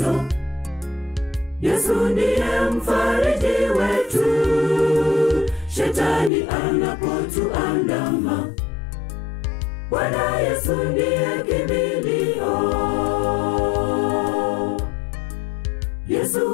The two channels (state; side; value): drops out; right; at 6.3 s